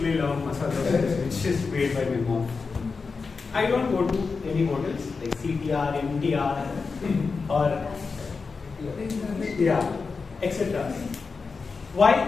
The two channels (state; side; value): quieter; right; 4.7 dB